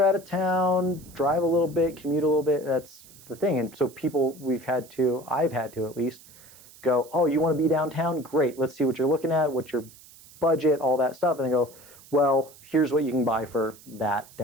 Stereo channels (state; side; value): noise; right; hiss, 22 dB below the sound